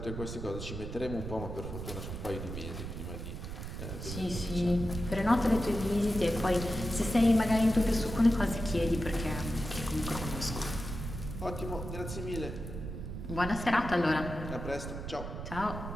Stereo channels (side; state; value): right; noise; rumble, 7 dB below the sound